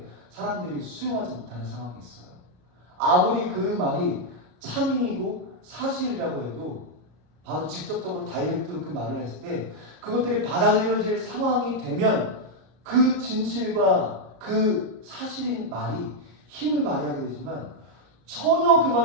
사람들이 수용하지 못하는 상황이 있어요. 아무리 그 말이 참이고 사실이라고 해도 바로 직접적으로 다이렉트로 그 말을 했을 때 그것들이 받아들여질 상황이 되면 그 진실과 그 사실인 말이 힘을 발휘하게 되지만 전혀 그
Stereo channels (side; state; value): left; late; 33 ms